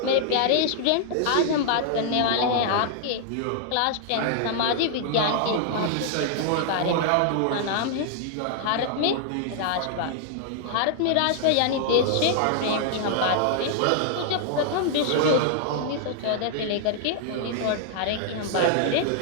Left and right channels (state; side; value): different; both; correlation -0.01